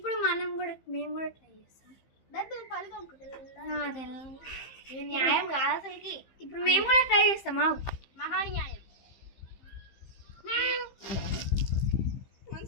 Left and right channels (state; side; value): late; right; 15 ms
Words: మేము కూడా ట్రై చేస్తాం. దాంతో కలుగు న్యాయం కాదు అసలుకి. ఇప్పుడు మేము కూడా ట్రై చేస్తామా? మహాన్యాయం.